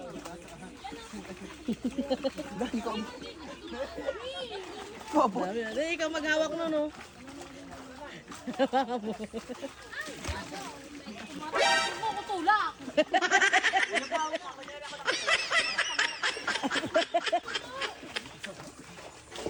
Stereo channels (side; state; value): both; identical; correlation 1.00